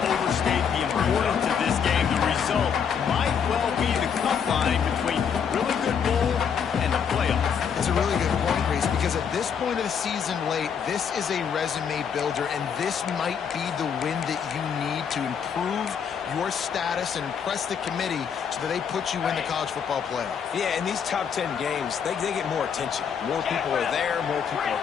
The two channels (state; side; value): quieter; right; 7.2 dB